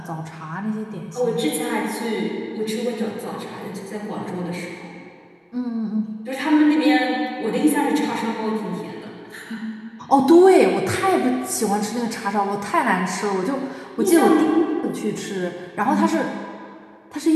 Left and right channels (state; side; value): identical; both; correlation 1.00